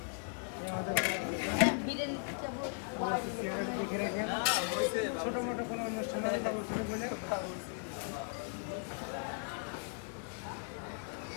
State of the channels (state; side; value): silent; right; 53 dB below the other